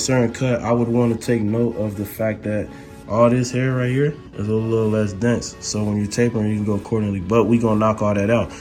cut, I would want to take note of the fact that all this hair right here is a little less dense. So when you're tapering, you can go accordingly, but we're gonna knock all that out.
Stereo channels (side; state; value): both; identical; correlation 1.00